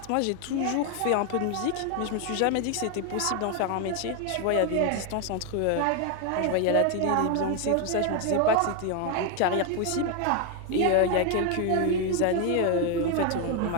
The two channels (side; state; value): both; different; correlation 0.01